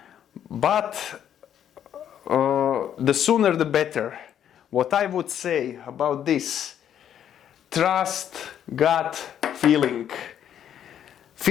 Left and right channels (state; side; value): quieter; right; 9.7 dB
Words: But the sooner the better. What I would say about this: trust gut feeling.